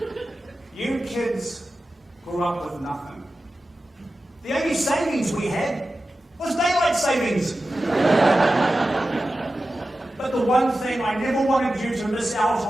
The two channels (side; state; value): both; normal; correlation 0.94